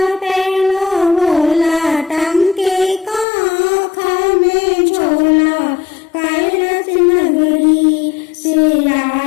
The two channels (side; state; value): right; drops out; at 3.2 s